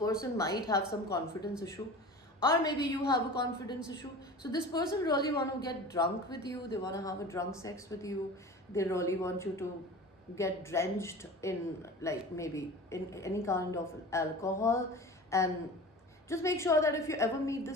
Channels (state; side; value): normal; both; correlation 0.36